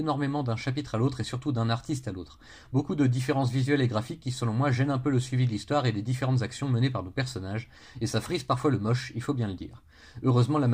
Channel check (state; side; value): identical; both; correlation 1.00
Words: d'un chapitre à l'autre et surtout d'un artiste à l'autre. Beaucoup de différences visuelles et graphiques qui selon moi gênent un peu le suivi de l'histoire et des différentes actions menées par nos personnages, et ça frise parfois le moche, il faut bien le dire. Heureusement, la